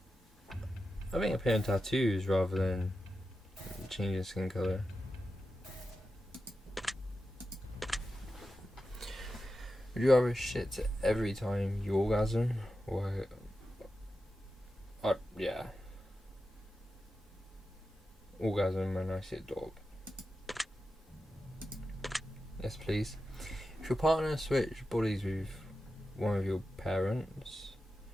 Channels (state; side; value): normal; both; correlation 0.91